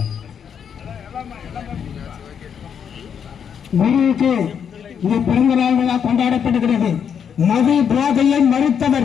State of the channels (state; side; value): quieter; right; 7.7 dB